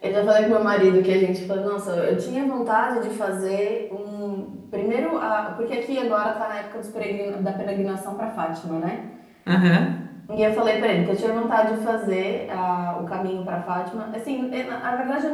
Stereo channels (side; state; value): both; identical; correlation 1.00